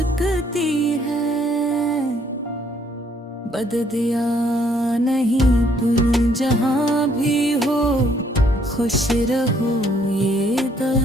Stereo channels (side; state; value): both; normal; correlation 0.67